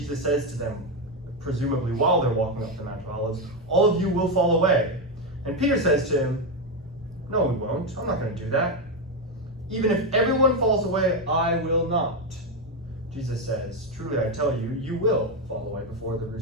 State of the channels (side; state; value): both; normal; correlation 0.08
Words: says to them, presumably while they're walking up the Mount of Olives, all of you will fall away. And Peter says to him, no, we won't. I'm not going to do that. Even if everyone falls away, I will not. Jesus says, truly I tell you, you will fall away before the